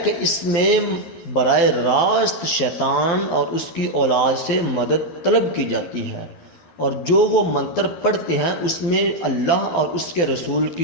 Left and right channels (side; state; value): right; late; 12 ms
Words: کہ اس میں براہ راست شیطان اور اس کی اولاد سے مدد طلب کی جاتی ہے، اور جو وہ منتر پڑھتے ہیں اس میں اللہ اور اس کے رسول